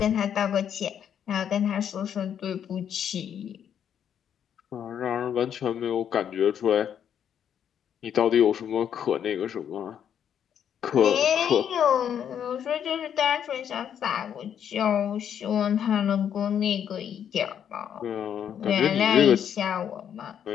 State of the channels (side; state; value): right; quieter; 8.9 dB